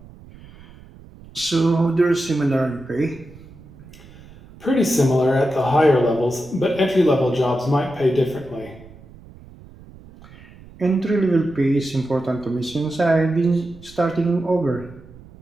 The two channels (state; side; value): noise; right; rumble, 21 dB below the sound